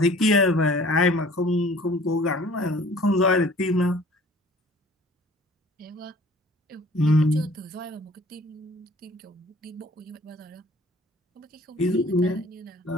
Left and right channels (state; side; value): normal; both; correlation 0.51